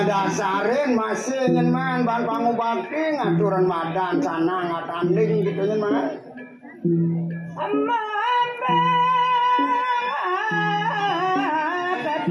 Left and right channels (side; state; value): both; identical; correlation 1.00